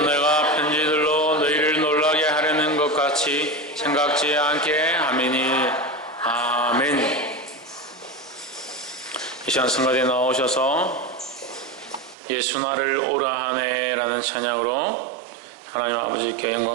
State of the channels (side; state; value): left; drops out; at 12.2 s